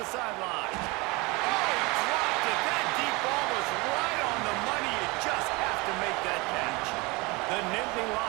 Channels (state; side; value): quieter; left; 25.2 dB